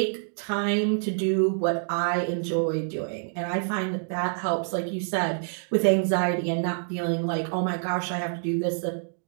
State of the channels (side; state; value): left; silent; digital silence